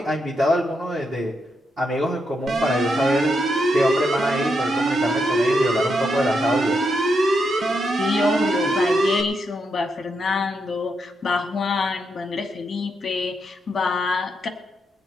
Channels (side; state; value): both; normal; correlation 0.82